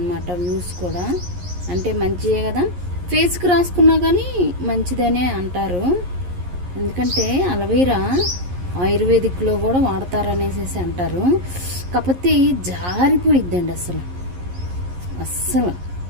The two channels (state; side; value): late; left; 11 ms